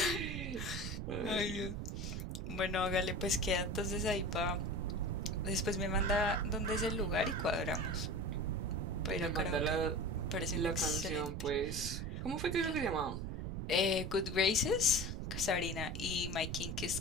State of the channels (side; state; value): right; noise; rumble, 4 dB below the sound